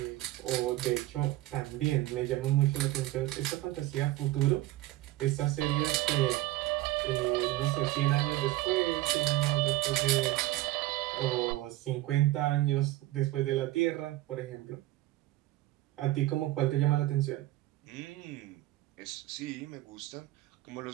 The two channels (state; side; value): quieter; left; 17.0 dB